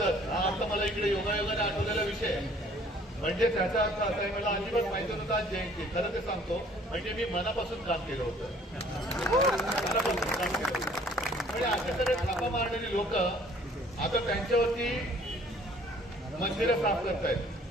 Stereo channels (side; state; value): both; normal; correlation 0.56